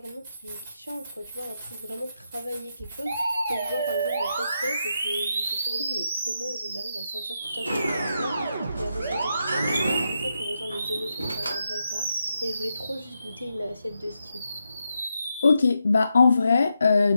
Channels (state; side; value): inverted; both; correlation -0.85